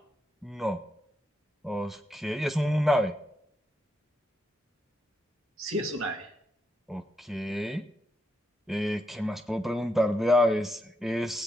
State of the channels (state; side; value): normal; both; correlation 0.82